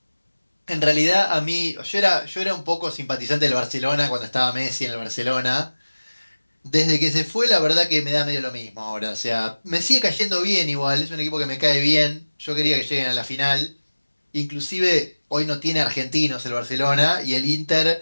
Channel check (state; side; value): inverted; both; correlation -1.00